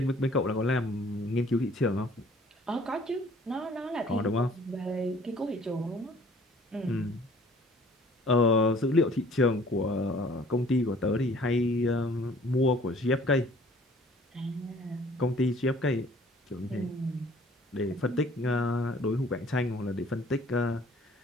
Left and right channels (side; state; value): both; normal; correlation 0.54